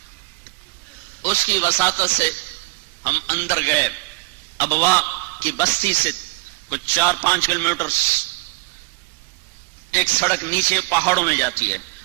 اس کی وساطت سے ہم اندر گئے. ابوا کی بستی سے کچھ 4-5 کلومیٹر ایک سڑک نیچے پہاڑوں میں جاتی ہے.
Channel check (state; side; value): quieter; left; 26.3 dB